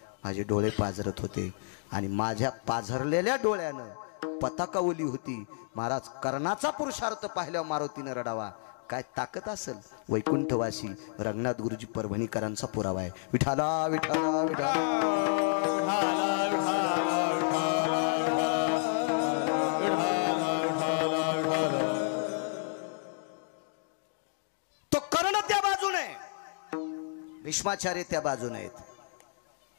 माझे डोळे पाझरत होते आणि माझ्या पाझरलेल्या डोळ्यानं पताका ओली होती. महाराज कर्णाचा पुरुषार्थ पाहिल्यावर मारुतीनं रडावा. काय ताकद असेल? वैकुंठवासी रंगनाथ गुरुजी परभणीकरांचा पुरावा आहे. विठाला विठाला विठाला. तो कर्ण त्या बाजूने, भीष्माचार्य त्या बाजूने आहेत.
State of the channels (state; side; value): silent; right; digital silence